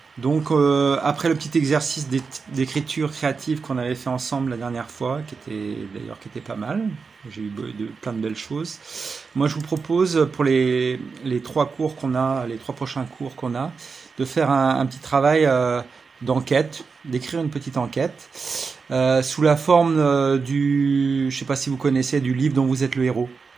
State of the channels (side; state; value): left; quieter; 5.0 dB